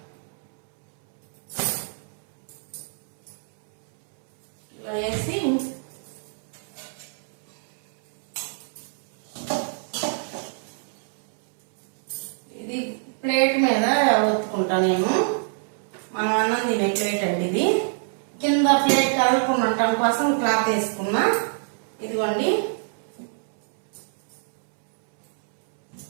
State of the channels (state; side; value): silent; left; 62 dB below the other